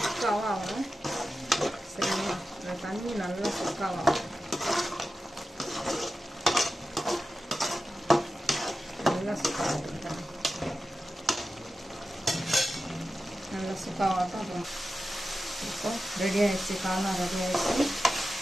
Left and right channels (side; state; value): both; normal; correlation 0.92